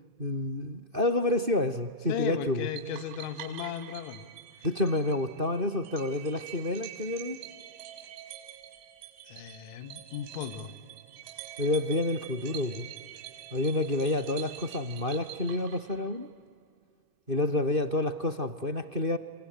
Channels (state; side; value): late; left; 2.6 ms